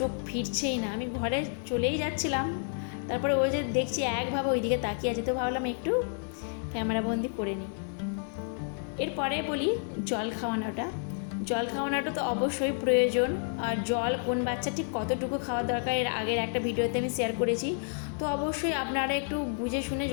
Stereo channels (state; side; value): silent; right; 58 dB below the other